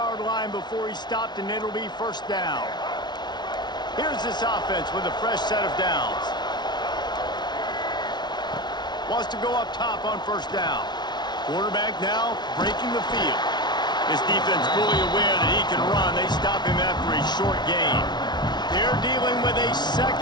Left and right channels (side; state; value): right; late; 0.20 ms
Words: line before he's stopped, and it'll be first down. Here's this offense with a fresh set of downs. Wants to go up top on first down. Quarterback now breaking the field. This defense fully aware that he can run. They stop him after a short gain. They're dealing with a